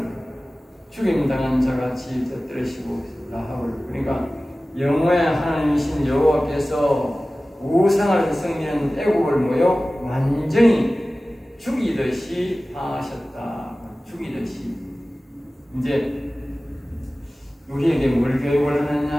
죽임당한 자같이 터뜨리시고 라합을 그러니까 영혼의 하나님이신 여호와께서 우상을 섬기는 애국을 뭐요? 완전히 죽이듯이 하셨다. 죽이듯이. 이제 우리에게 뭘 교육을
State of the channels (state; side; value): normal; both; correlation 0.97